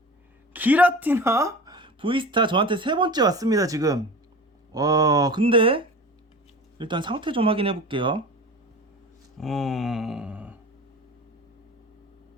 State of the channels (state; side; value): normal; both; correlation 0.35